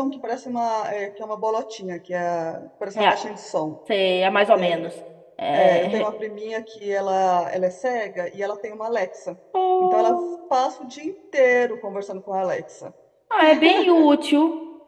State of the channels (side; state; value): both; identical; correlation 1.00